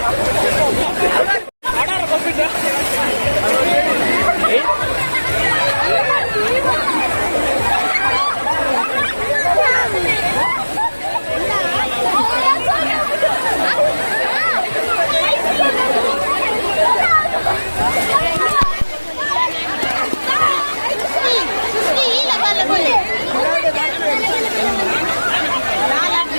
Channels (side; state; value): both; inverted; correlation -1.00